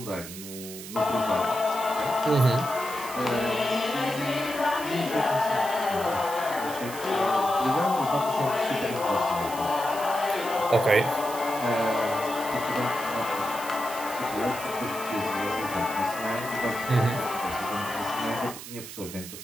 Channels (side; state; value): right; noise; hiss, 12 dB below the sound